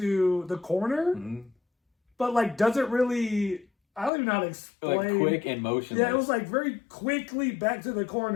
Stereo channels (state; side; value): drops out; right; at 4.1 s